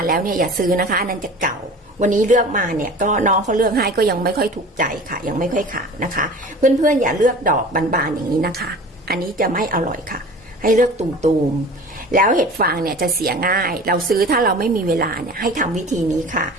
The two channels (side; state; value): both; normal; correlation 0.40